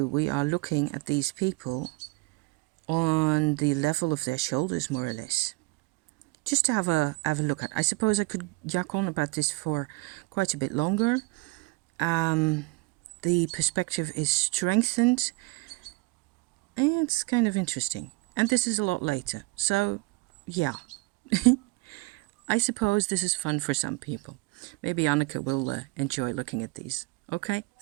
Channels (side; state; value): left; quieter; 25.4 dB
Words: we are looking at these people on the level of their shoulders, more or less. Just to have a look at. I suppose I could yak on about this for quite a bit longer. The perspective is strengthened. It's kind of interesting. And this is a lot later. So, yeah. I suppose this is fun for some people. Maybe Anneke will enjoy looking at these. Okay,